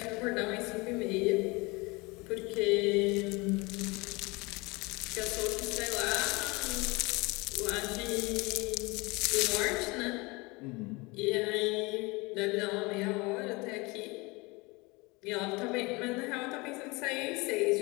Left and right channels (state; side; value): quieter; right; 25.2 dB